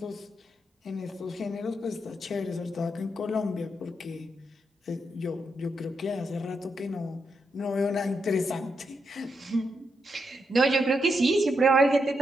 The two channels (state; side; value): normal; both; correlation 0.82